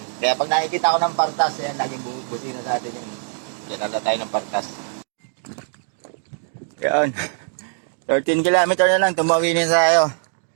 Kaya pag nakikita ko ng Partas, yan, laging buti na sa atin yun. Kaya nagla tayo ng Partas. Yan. 13 kilometer na lang, tumawinin tayo.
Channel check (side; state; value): left; silent; digital silence